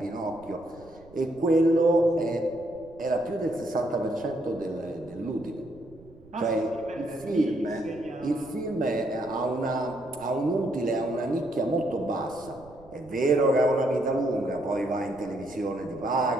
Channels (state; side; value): noise; right; rumble, 23 dB below the sound